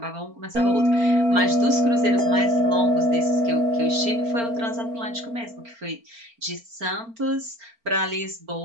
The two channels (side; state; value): left; late; 4.4 ms